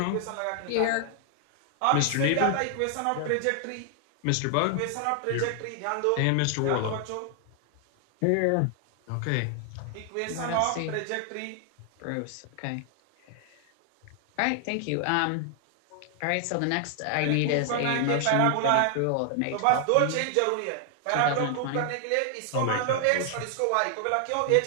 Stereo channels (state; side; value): different; both; correlation 0.00